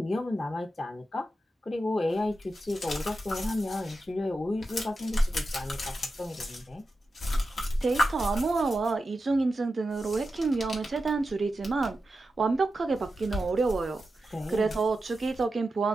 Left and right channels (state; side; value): normal; both; correlation 0.91